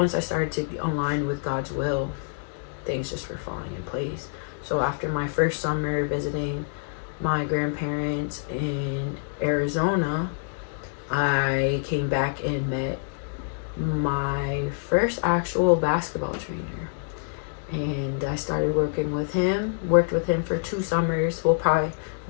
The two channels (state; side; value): silent; right; digital silence